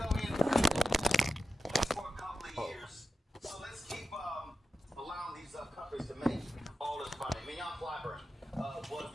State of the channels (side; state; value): both; normal; correlation 0.90